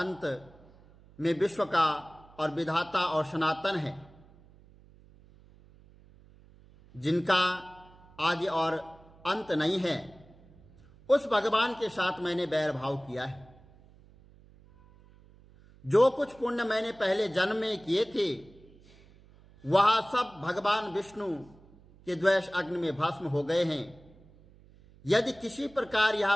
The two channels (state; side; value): noise; right; hum, 25 dB below the sound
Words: में विश्व का और विधाता और सनातन है, जिनका आदि और अंत नहीं है, उस भगवान के साथ मैंने बैर भाव किया है। जो कुछ पुण्य मैंने पहले जन्म में किए थे वह सब भगवान विष्णु के द्वेष अग्नि में भस्म हो गए हैं। यदि किसी प्रकार यह